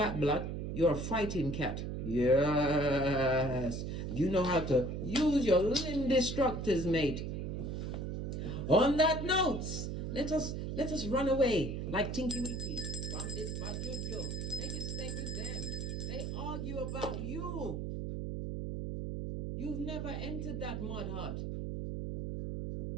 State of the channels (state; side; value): noise; right; hum, 3 dB below the sound